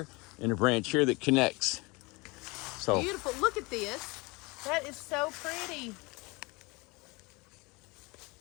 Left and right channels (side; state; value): right; quieter; 25.6 dB